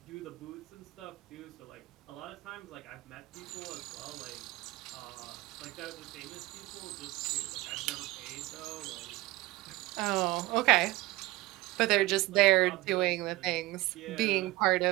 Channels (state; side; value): quieter; left; 19.5 dB